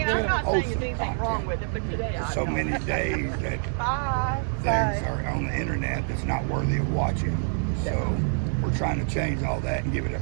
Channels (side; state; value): left; silent; 60 dB below the other